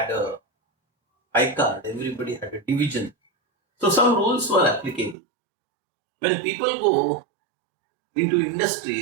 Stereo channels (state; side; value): drops out; left; at 5.2 s